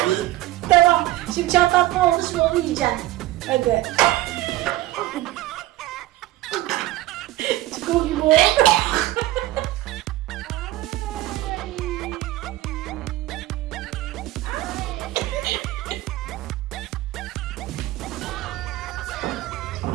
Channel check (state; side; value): quieter; left; 16.7 dB